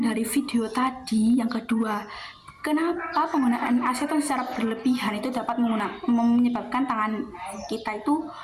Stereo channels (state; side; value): identical; both; correlation 1.00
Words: dari video tadi yang kedua. Kenapa penggunaan aseton secara berlebihan itu dapat menyebabkan tangan kita itu